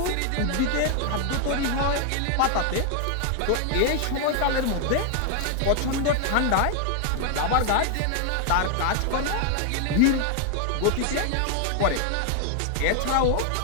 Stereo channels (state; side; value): different; both; correlation 0.00